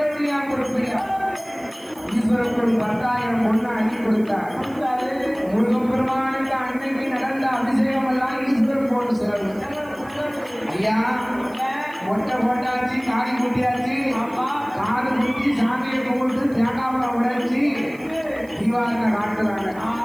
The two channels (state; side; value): noise; right; hiss, 26 dB below the sound